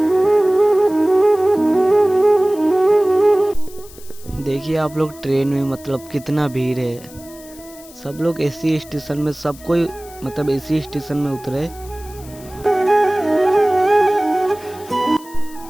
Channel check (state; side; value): noise; left; hiss, 21 dB below the sound